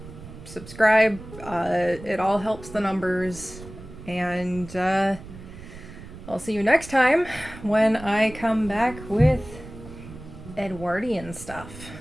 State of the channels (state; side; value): noise; right; rumble, 15 dB below the sound